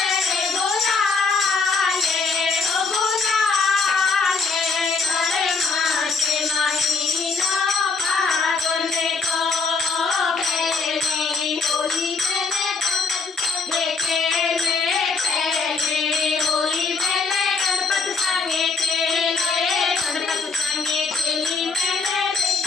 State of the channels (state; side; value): quieter; right; 4.3 dB